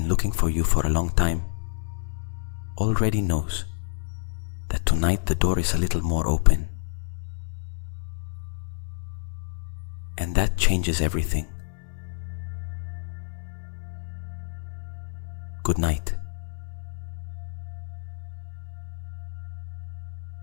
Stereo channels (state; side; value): silent; right; 59 dB below the other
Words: looking for you for a long time already knows that tonight the door is a little more open. And that changes everything. Good night.